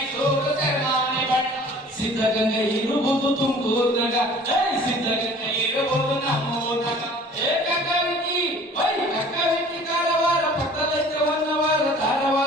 ಸೆರಮಾನೆ ಬಳ್ಳಾರಿ ಸಿದ್ಧಗಂಗೆ ಇರುವುದು ತುಮಕೂರ್ನಾಗ ಸಿದ್ಧಗಂಗೆ ಇರುವುದು ನಮ್ಮೂರ್ನಾಗ ಕಕ್ಕಾವಿಕಿ ಕಕ್ಕಾವಿಕಿ ಕಾರವಾರ ಪಕ್ಕದೈತೆ ಹೊನ್ನವಾರ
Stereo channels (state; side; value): normal; both; correlation 0.48